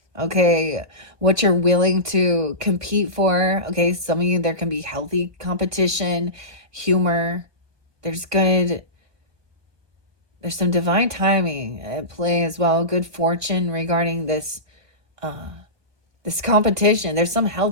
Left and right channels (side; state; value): left; late; 1.2 ms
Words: Okay, what you're willing to compete for. Okay, some of you, there can be healthy competition, humor. There's some divine timing at play as well. Good fortune regarding this this competition. There's some